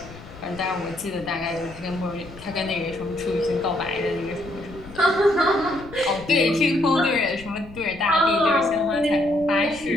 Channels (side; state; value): left; noise; rumble, 18 dB below the sound